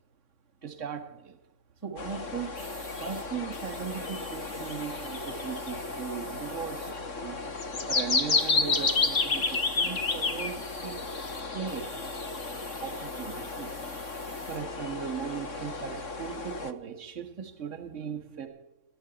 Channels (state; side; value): late; right; 3.6 ms